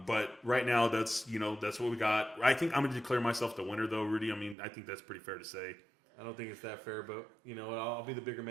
right now, that's what we got. I think I'm going to declare myself the winner, though, Rudy. I mean, I think that's pretty fair to say. I don't think it's that fair, but you know what? I'll be the bigger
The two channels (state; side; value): drops out; left; at 4.5 s